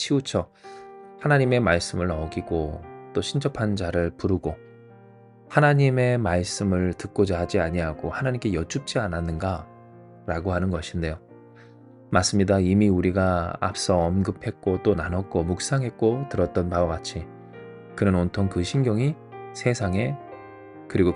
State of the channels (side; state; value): both; identical; correlation 1.00